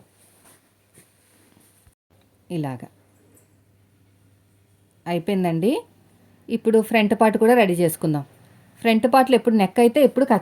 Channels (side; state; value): both; identical; correlation 1.00